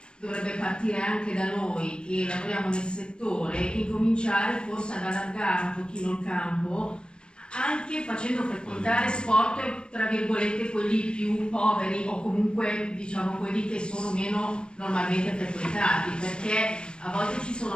dovrebbe partire anche da noi che lavoriamo nel settore, incominciare forse ad allargare un pochino il campo, anche facendo frequentare sport tra virgolette quelli più poveri o comunque diciamo quelli che sono meno normalmente frequentati, perché a volte ci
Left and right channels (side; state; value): right; late; 0.051 ms